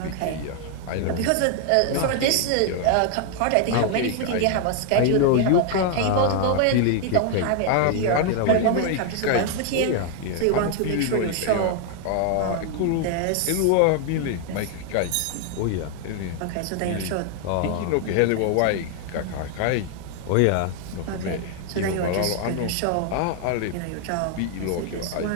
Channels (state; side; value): different; both; correlation 0.00